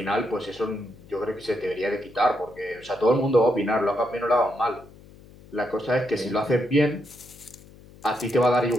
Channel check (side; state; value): left; noise; hum, 22 dB below the sound